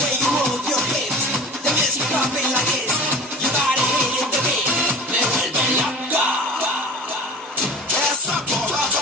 you move your hips, the music popping like this, your body hitting the beat, me vuelve loca. Essa porra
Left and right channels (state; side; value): normal; both; correlation 0.38